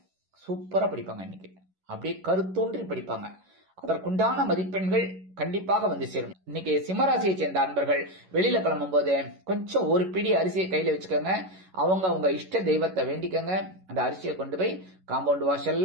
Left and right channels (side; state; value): left; late; 11 ms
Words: சூப்பரா படிப்பாங்க. இன்னைக்கு அப்படியே கருத்தூன்றி படிப்பாங்க. அதற்குண்டான மதிப்பெண்கள் கண்டிப்பாக வந்து சேரும். இன்னைக்கு சிம்மராசியை சேர்ந்த அன்பர்கள் வெளியில கிளம்பும் போது கொஞ்சம் ஒரு பிடி அரிசியை கையில வச்சுக்கோங்க. அவங்க இஷ்ட தெய்வத்தை வேண்டிக்கங்க. அந்த அரிசியை கொண்டு போய் காம்பவுண்ட்